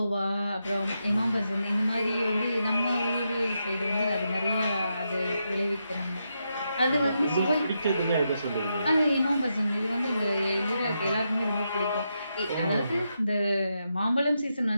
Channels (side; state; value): both; inverted; correlation -0.84